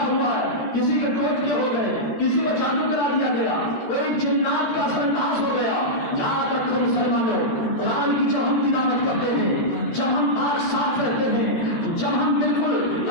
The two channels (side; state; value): right; late; 13 ms